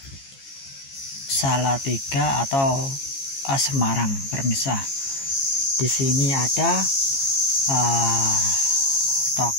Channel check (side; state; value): right; late; 15 ms